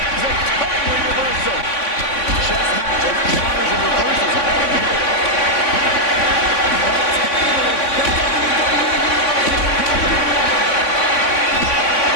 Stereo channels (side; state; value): right; late; 3.5 ms